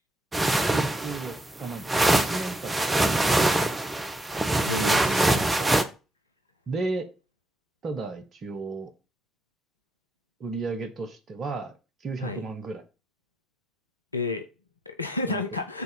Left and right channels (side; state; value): both; normal; correlation 0.78